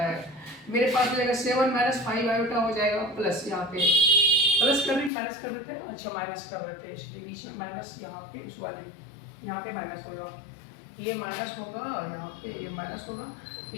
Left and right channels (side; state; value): right; drops out; at 5.1 s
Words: मेरे पास हो जाएगा 7 माइनस 5 आयोटा हो जाएगा, प्लस यहाँ पे प्लस कर भी माइनस कर देते हैं, अच्छा माइनस कर देते हैं, इसलिए बीच में माइनस यहाँ पे इस वाले यहाँ पे माइनस होगा, ये माइनस होगा और यहाँ पे ये माइनस होगा, तो